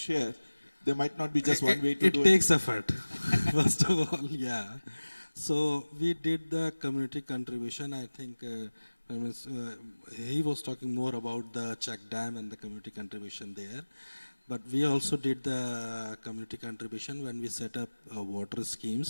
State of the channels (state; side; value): inverted; both; correlation -1.00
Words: there might not be just one way to do it. It takes effort, first of all, yeah. So we did the community contribution. I think he was talking more about the check dam and the community contribution there. But we also did the community contribution when we set up water